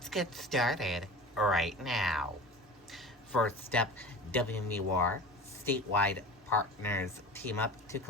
get started right now. First up, WMUR statewide partners team up to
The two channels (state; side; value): normal; both; correlation 0.35